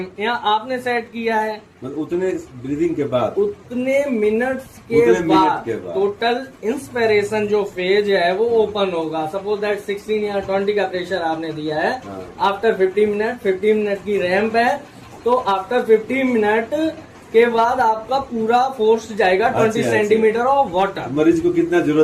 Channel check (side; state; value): both; identical; correlation 1.00